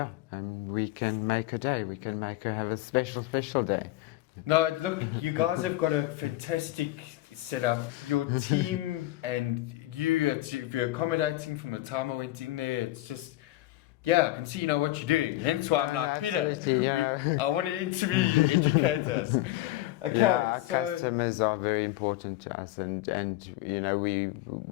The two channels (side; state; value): right; quieter; 16.5 dB